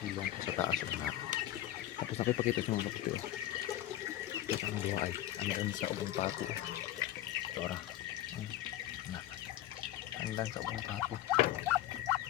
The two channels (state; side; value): quieter; right; 13.3 dB